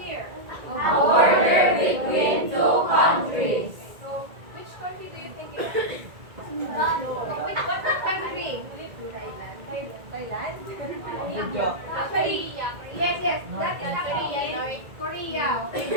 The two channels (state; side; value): late; left; 1.9 ms